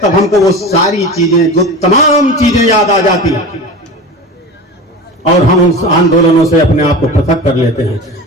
तब हमको वो सारी चीजें, जो तमाम चीजें याद आ जाती हैं और हम उन आंदोलनों से अपने आप को पृथक कर लेते हैं।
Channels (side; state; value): both; normal; correlation 0.31